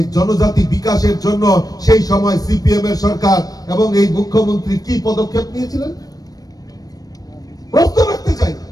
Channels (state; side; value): late; right; 0.18 ms